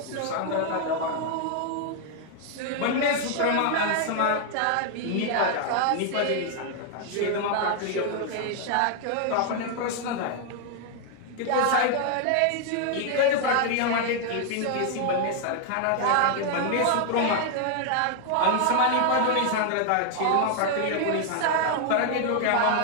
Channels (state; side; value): different; both; correlation 0.00